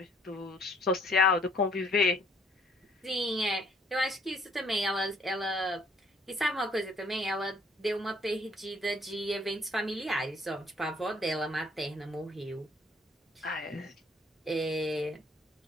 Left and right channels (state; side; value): normal; both; correlation 0.61